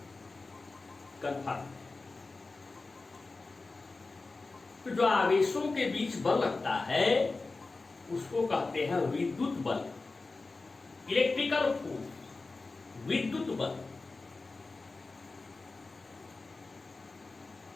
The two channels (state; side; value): quieter; right; 3.7 dB